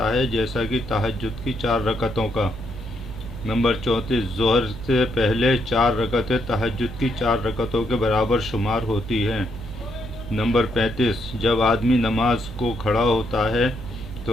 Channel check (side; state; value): right; noise; hum, 12 dB below the sound